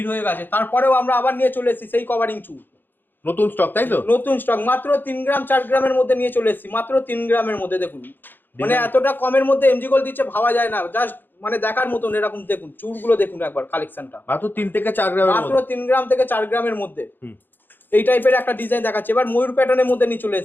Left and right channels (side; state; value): right; late; 0.094 ms